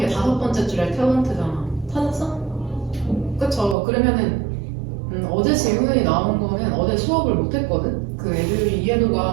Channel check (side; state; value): left; drops out; at 3.8 s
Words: 5번째 줄에 탤런트잖아. 찾았어? 그쵸? 그러면은 어제 질문이 나온 거는 어제 수업을 못했거든? 그 애들이